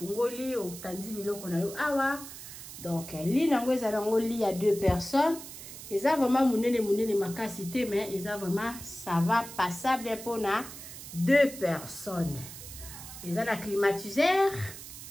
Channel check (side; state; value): right; noise; hiss, 13 dB below the sound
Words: otandi biloko na yo awa. Donc lit nango eza nango lit ya 2 personnes. Eza vraiment munene makasi te mais eza vraiment ça va passable pour na 2 personnes. Eza na climatiseur.